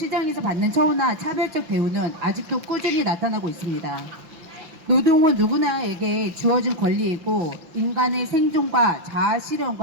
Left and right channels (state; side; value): late; left; 5.7 ms